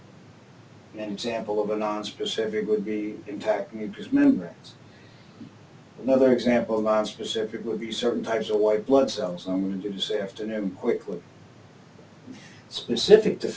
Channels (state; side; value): identical; both; correlation 1.00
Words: An example of a nonspecific would be intact mucous membranes. Another example of nonspecific would be certain types of white blood cells. I'm going to do this afternoon quickly. Specific